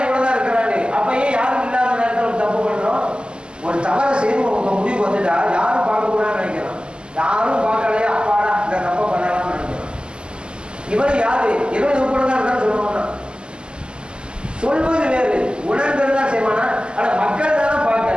எவ்வளவுதான் இருக்கிறாரு, அப்பயே யாரும் இல்லாத நேரத்தில் தப்பு பண்றோம். ஒரு தவறை செய்து உங்க முடிவு வந்துட்டா யாரும் பார்க்க கூடாதுன்னு நினைக்கிறோம். யாரும் பார்க்கலையா அப்பாடா இந்த தப்பை பண்ணலாம்னு நினைக்கிறோம். இவர் யாரு, இவன் உட்படதான் இருக்கான்னு சொல்லுவானா? சொல்வது வேறு, உணர்ந்ததுதான் செய்வானா? ஆனா மக்கள் தானே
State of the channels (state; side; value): late; left; 0.049 ms